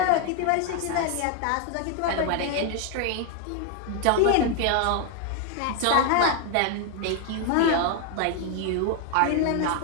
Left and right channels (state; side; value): different; both; correlation 0.01